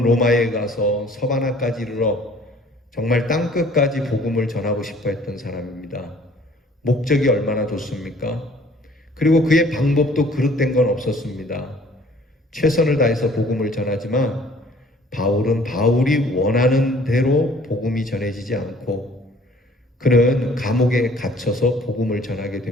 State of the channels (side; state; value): both; normal; correlation 0.55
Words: 로마에 가서 서바나까지 이르러 정말 땅끝까지 복음을 전하고 싶어 했던 사람입니다. 목적이 얼마나 좋습니까? 그리고 그의 방법도 그릇된 건 없었습니다. 최선을 다해서 복음을 전하지만 바울은 바울이 원하는 대로 복음이 전해지지 않고 그는 감옥에 갇혀서 복음을 전하게